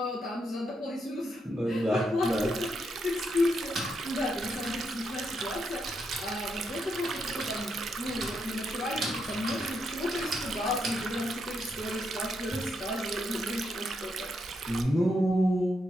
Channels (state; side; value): normal; both; correlation 0.80